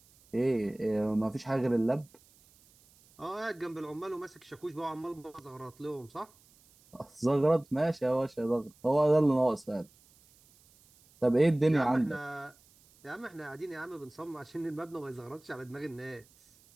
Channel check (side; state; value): right; noise; hiss, 29 dB below the sound